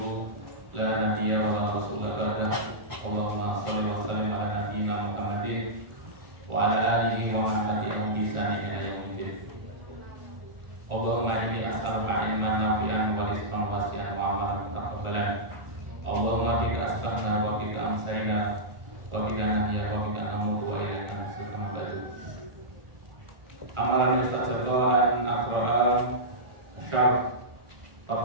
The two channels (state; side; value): late; left; 1.4 ms